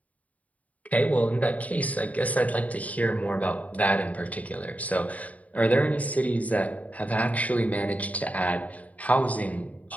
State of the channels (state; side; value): late; right; 0.070 ms